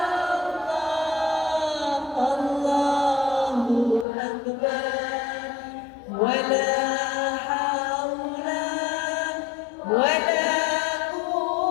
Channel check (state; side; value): drops out; right; at 4.0 s